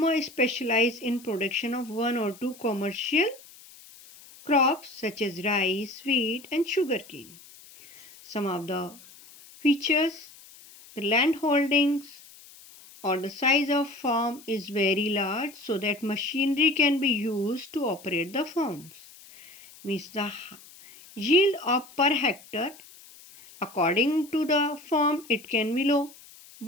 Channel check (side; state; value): left; noise; hiss, 21 dB below the sound